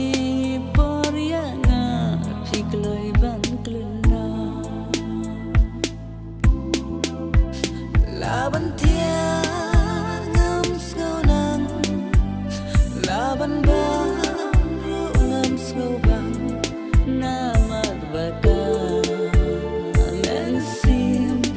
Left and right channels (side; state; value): both; identical; correlation 1.00